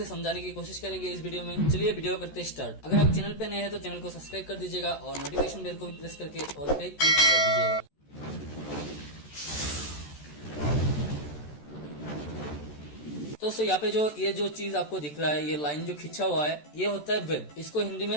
समझाने की कोशिश करेंगे इस वीडियो में। चलिए वीडियो करते स्टार्ट। अगर आप चैनल पे नए हैं तो चैनल को सब्सक्राइब कर दीजिएगा और नोटिफिकेशन बेल को भी प्रेस करके ऑल पे क्लिक कर दीजिएगा। तो दोस्तों यहाँ पे ये जो चीज आपको दिख रहा है, ये लाइन जो खिंचा हुआ है, ये होता है वेव। इसको हिंदी में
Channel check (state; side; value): late; right; 14 ms